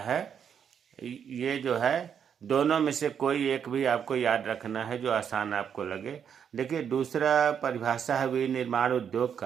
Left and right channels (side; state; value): left; quieter; 7.9 dB